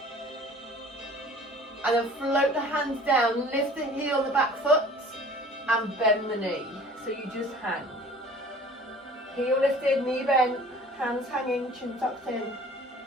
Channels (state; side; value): normal; both; correlation 0.47